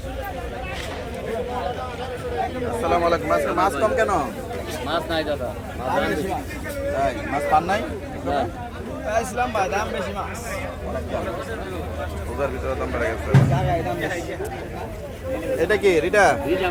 আলাইকুম। আজকে মাছ কম কেন? মাছ নাই দাদা, তাই মাছ পান নাই? ইসলাম ভাই দাম বেশি মাছ রোজার ভিতরে দাম বেড়ে গেছে। এটা কি রিটা?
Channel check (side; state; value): both; identical; correlation 1.00